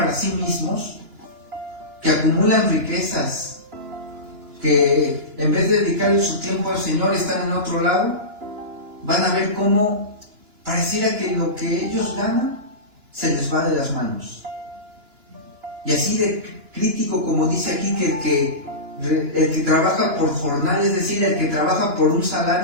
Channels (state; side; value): late; left; 2.9 ms